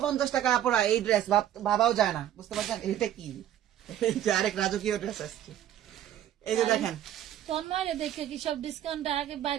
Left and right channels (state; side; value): quieter; left; 11.5 dB